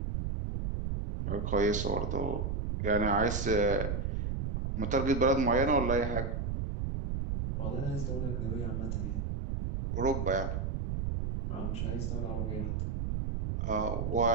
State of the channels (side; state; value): right; noise; rumble, 1 dB below the sound